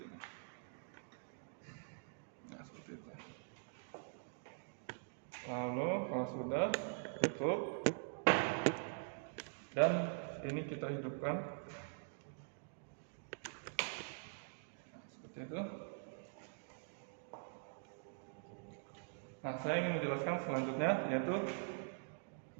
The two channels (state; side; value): silent; left; digital silence